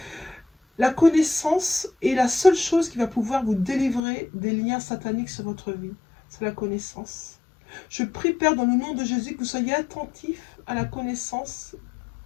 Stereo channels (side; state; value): right; drops out; at 4.0 s